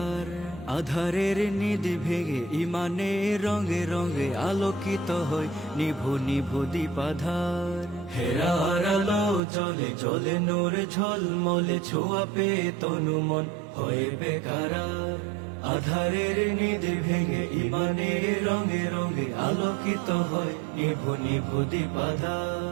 আধারের নিধি ভেঙে ইমানে রঙে রঙে আলোকিত হয় নিভু নিভু দীপাধার। হেরার আলো জলে জলে নূর ঝলমলে ছোঁয়া পে তনু মন হয়ে বেকারার। আধারের নিধি ভেঙে ইমানে রঙে রঙে আলোকিত হয় নিভু নিভু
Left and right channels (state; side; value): drops out; left; at 9.4 s